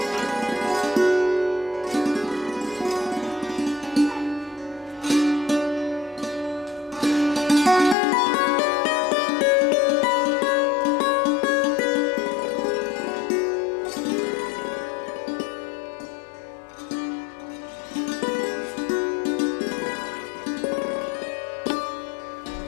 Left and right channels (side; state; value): right; drops out; at 8.0 s